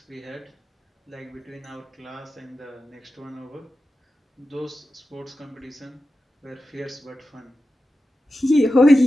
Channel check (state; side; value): normal; both; correlation 0.92